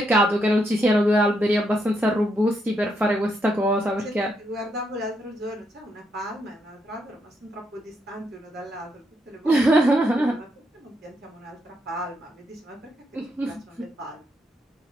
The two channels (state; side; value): normal; both; correlation 0.78